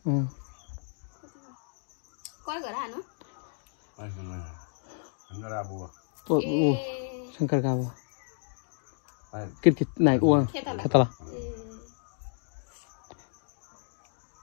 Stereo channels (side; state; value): right; silent; digital silence